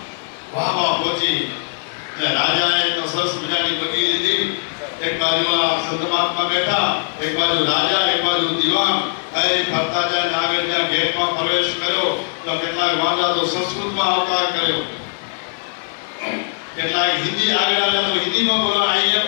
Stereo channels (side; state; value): right; silent; 62 dB below the other